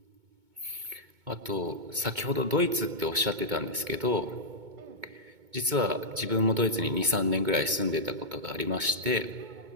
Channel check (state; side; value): late; left; 2.2 ms